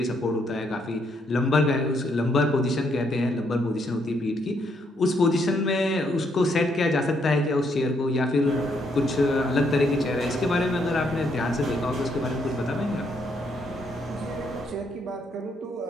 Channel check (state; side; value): normal; both; correlation 0.73